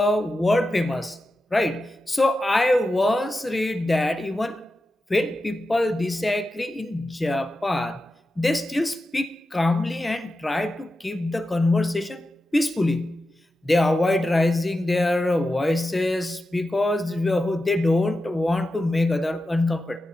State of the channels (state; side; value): normal; both; correlation 0.91